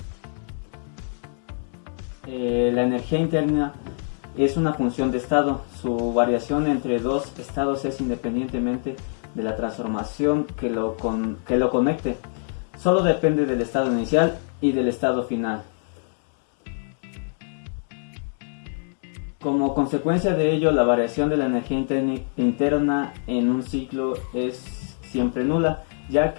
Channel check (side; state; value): right; silent; digital silence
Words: La energía interna es una función de estado. Su variación entre dos estados es independientemente de la transformación que lo conecte. Solo depende del estado inicial y del estado final. Como consecuencia de ello, la variación de la energía interna en un ciclo es siempre nula, ya